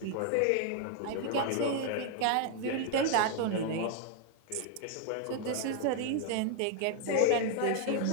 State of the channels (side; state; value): both; different; correlation 0.00